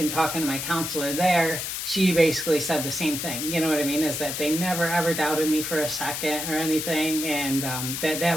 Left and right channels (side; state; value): left; noise; hiss, 4 dB below the sound